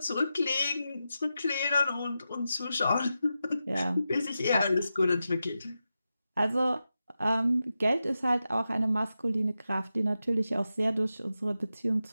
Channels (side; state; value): both; inverted; correlation -0.90